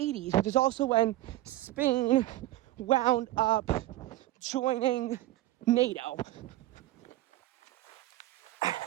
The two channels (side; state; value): left; quieter; 16.1 dB